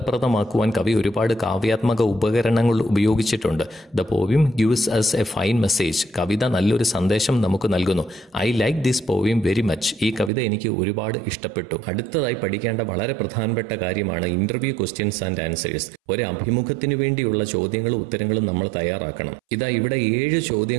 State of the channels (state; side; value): drops out; left; at 10.3 s